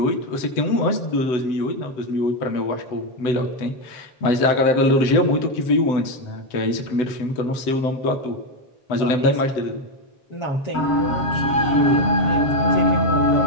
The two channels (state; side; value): late; right; 7.9 ms